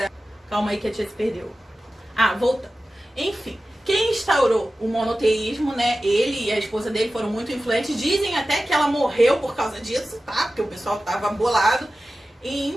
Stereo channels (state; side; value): normal; both; correlation 0.95